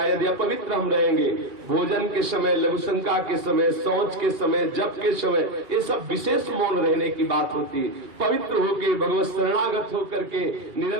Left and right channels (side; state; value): left; late; 2.8 ms